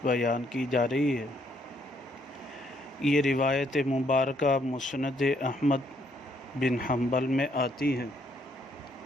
بیان کی جا رہی ہے۔ یہ روایت مبارکہ مسند احمد بن حنبل میں آتی ہے،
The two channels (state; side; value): normal; both; correlation 0.70